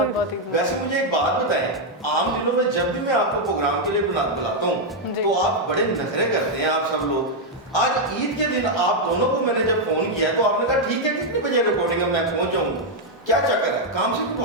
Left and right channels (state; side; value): normal; both; correlation -0.01